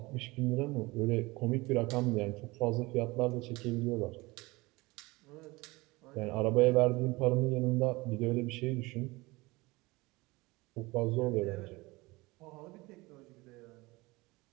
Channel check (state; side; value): quieter; left; 22.5 dB